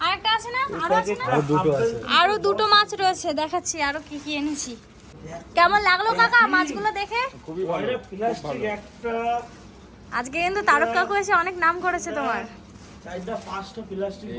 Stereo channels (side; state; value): both; identical; correlation 1.00